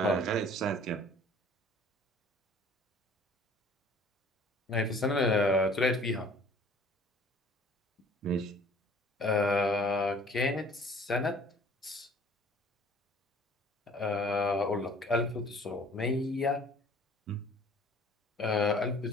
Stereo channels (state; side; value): normal; both; correlation 0.52